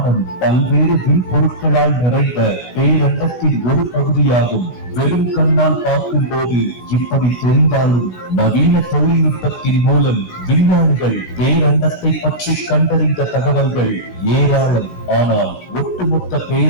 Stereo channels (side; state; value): right; late; 16 ms